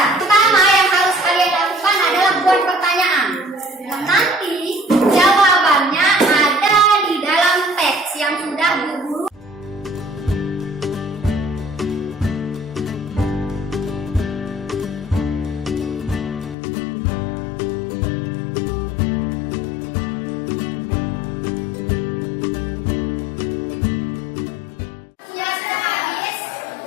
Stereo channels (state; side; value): drops out; right; at 16.6 s